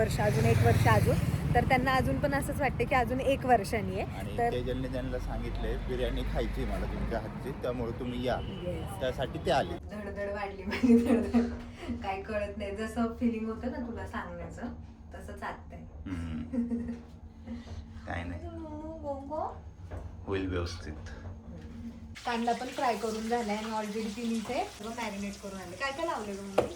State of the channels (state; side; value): identical; both; correlation 1.00